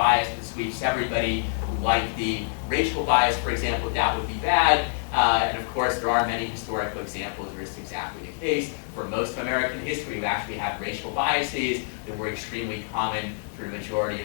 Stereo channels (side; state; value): right; silent; digital silence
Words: that sweeps everybody, like the racial bias, for example, that would be bad. And of course, there are many historical examples where it's exactly the case. For most of American history, we actually had racial biases that were extremely common for the majority